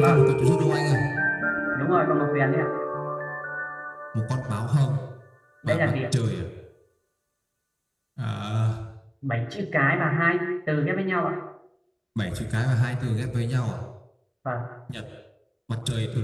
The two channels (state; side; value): identical; both; correlation 1.00